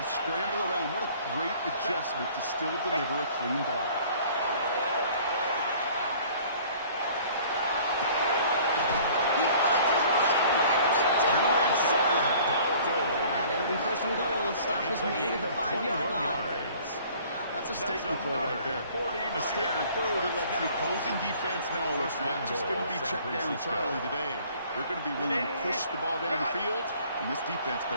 scramble around. What a great adjustment to still deliver a clean ball. He finds his running back deep down the left side. And it'll be 1st and goal. Stop is made at the 5-yard line. That's a statement throw right there. A statement throw that lets the opposing defense know it's not just going to be check down Charlie today. They're going to be willing to push the ball down the field, and this defense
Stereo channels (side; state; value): both; inverted; correlation -0.52